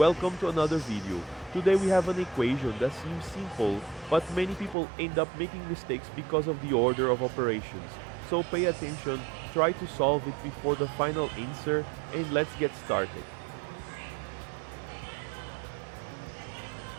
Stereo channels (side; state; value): left; drops out; at 4.8 s